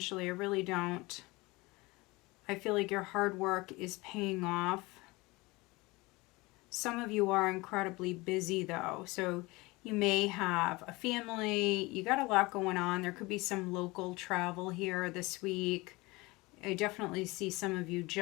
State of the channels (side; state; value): right; quieter; 23.1 dB